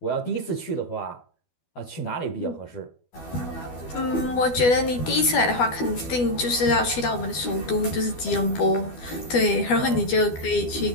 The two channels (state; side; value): late; right; 12 ms